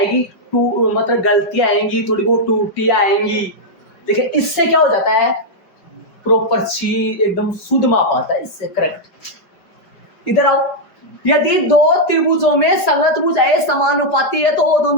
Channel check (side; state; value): right; late; 5.2 ms